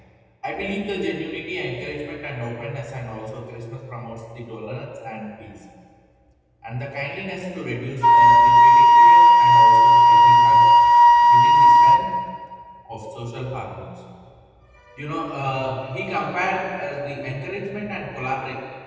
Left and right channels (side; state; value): both; identical; correlation 1.00